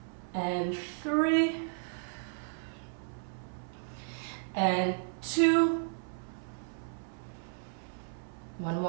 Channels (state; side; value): silent; left; 55 dB below the other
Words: And 3. And 2. 1